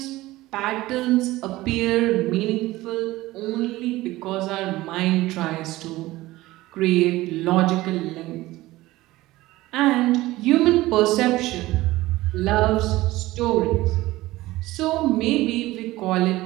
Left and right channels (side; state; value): left; quieter; 17.9 dB